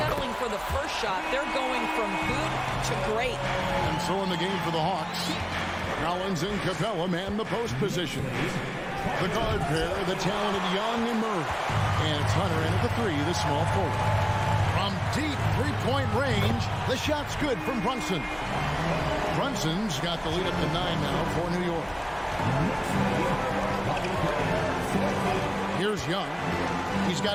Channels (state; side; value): identical; both; correlation 1.00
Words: for the first shot. They're going from good to great. And so in the game for the Hawks, Collins and Capella man the post position. The guard pair, the talented Young and Murray. And it's Hunter in at the 3, the small forward. From deep three-point range, the shot's good from Brunson. Brunson's got the lead up to 9 now for New York. Here's Young. He's